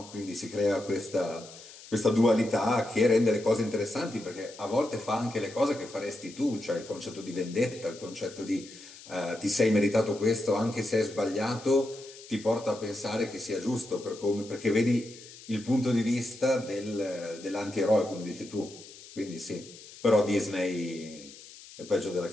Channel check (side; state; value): left; noise; hiss, 18 dB below the sound